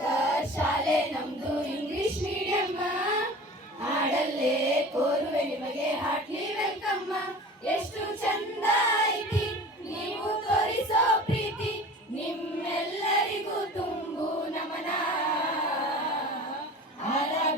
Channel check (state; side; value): normal; both; correlation 0.39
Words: ಶಾಲೆ ನಮ್ದು ಇಂಗ್ಲಿಷ್ ಮೀಡಿಯಂ. ಹಾಡಲ್ಲೇ ಕೋರುವೆ ನಿಮಗೆ ಹಾರ್ಟ್ಲಿ ವೆಲ್ಕಮ್. ಎಷ್ಟು ಚಂದ ಐತಿ ನೀವು ತೋರಿಸೋ ಪ್ರೀತಿ, ನಿಮ್ಮೆಲ್ಲರಿಗೂ ತುಂಬು ನಮನ.